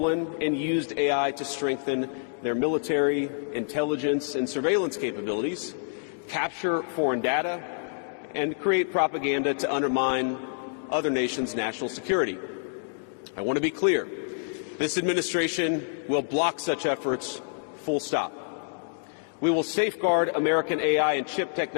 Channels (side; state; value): right; silent; digital silence